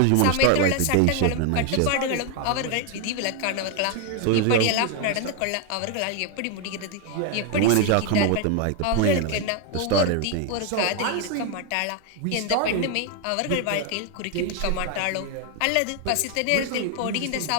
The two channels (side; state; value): both; different; correlation 0.01